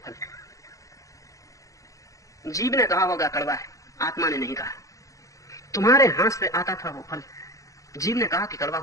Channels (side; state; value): right; late; 0.16 ms